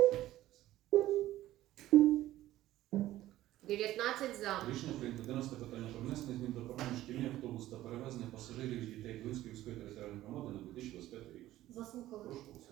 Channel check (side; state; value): left; quieter; 14.8 dB